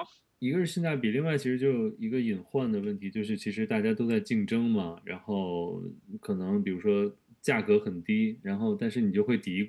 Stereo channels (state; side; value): identical; both; correlation 1.00